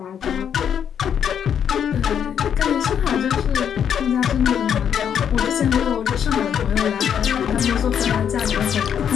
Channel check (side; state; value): right; quieter; 8.5 dB